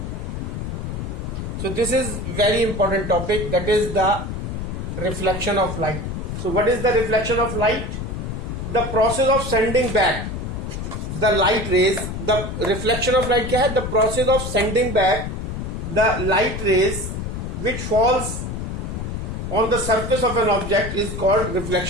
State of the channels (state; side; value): noise; left; rumble, 5 dB below the sound